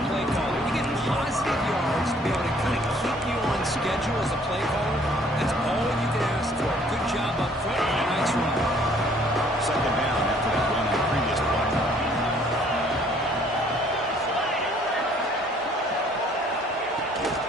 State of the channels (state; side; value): normal; both; correlation 0.60